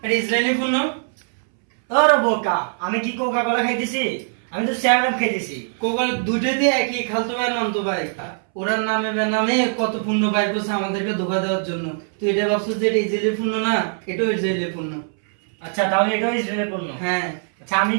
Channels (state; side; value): silent; left; 64 dB below the other